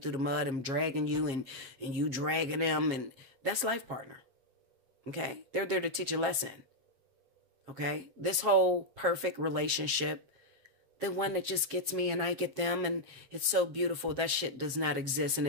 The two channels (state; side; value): late; left; 7.4 ms